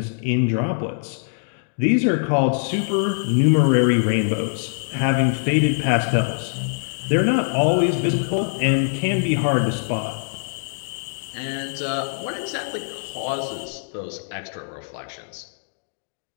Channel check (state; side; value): silent; right; digital silence